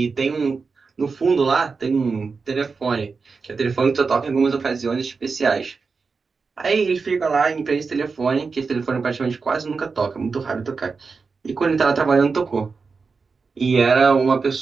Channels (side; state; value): left; quieter; 4.7 dB